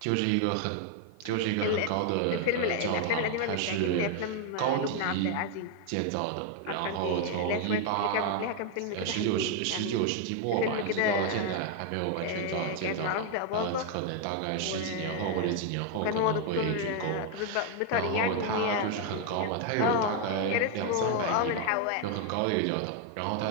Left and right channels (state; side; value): different; both; correlation 0.01